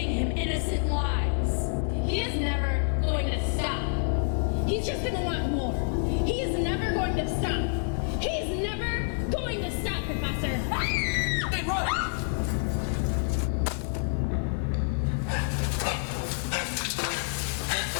him innocent lives. He is never going to stop. He's just gonna want more. He is never going to stop. He's never going to stop, Professor. Hey, run!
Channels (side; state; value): right; silent; 59 dB below the other